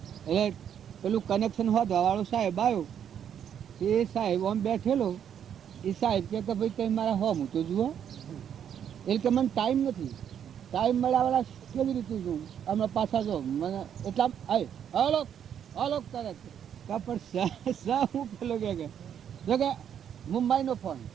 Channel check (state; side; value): quieter; left; 8.9 dB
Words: એટલે પેલું કનેક્શન હોદવાવાળો સાહેબ આવ્યો, એ સાહેબ આમ બેઠેલો. એ સાહેબ કે ભાઈ કંઈ મારા હોમ તો જુઓ. એટલે કે મને ટાઈમ નથી, ટાઈમ મળ્યાવાળા કેવી રીતે જોઉં અમે પાછા જો મને એટલા અલોક કરે પણ હું પેલો કે મુંબઈનો ફોન